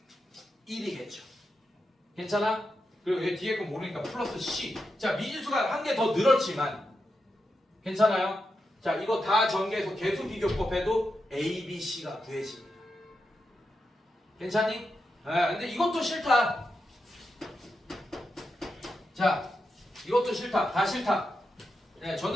1이겠죠. 괜찮아? 그리고 얘 뒤에 거 모르니까 플러스 c. 자, 미지수가 한 개 더 늘었지만 괜찮아요? 자, 이거 다 전개해서 계수 비교법 해도 a, b, c가 구해집니다. 괜찮니? 근데 이것도 싫다. 자, 이것도 싫다. 다 싫다. 네,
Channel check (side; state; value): both; normal; correlation 0.87